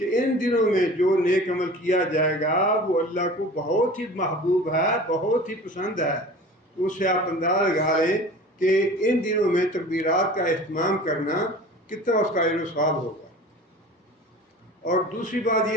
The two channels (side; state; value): both; normal; correlation 0.40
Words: ان دنوں میں جو نیک عمل کیا جائے گا وہ اللہ کو بہت ہی محبوب ہے، بہت ہی پسند ہے۔ تو اس سے آپ اندازہ لگا لیں کہ ان دنوں میں تکبیرات کا اہتمام کرنا کتنا اس کا اجر و ثواب ہوگا۔ اور دوسری بات